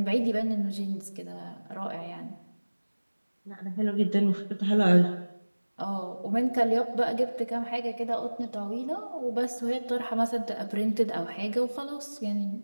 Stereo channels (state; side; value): inverted; both; correlation -1.00